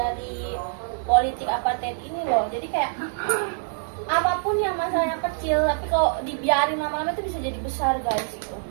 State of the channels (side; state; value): left; silent; digital silence